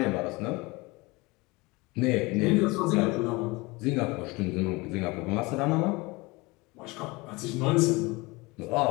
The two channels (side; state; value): right; quieter; 24.2 dB